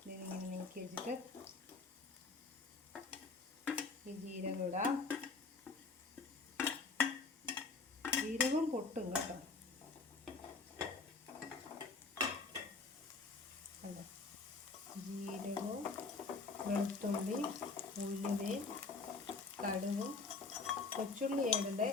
ഇതിങ്ങനെ നീക്കി വെച്ചിട്ട് ഈ ജീരകം ഇടാം. ജീരകം പൊട്ടും കേട്ടോ. അല്ല, ജീരകവും വെളുത്തുള്ളി, ഉലുവയും കടുകും, കൊച്ചുള്ളി ഇടണ്ടേ.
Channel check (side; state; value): right; quieter; 4.1 dB